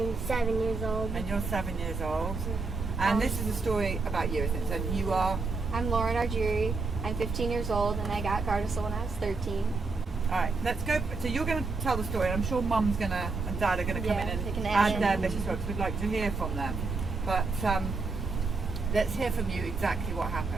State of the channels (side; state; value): left; quieter; 4.0 dB